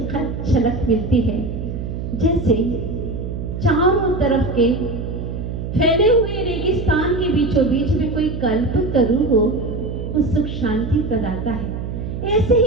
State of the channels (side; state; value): right; noise; hum, 6 dB below the sound